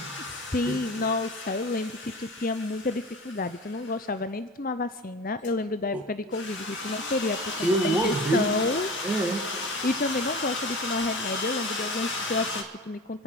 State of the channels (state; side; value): normal; both; correlation 0.34